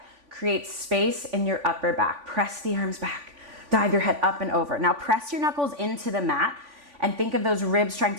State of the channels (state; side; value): late; left; 3.5 ms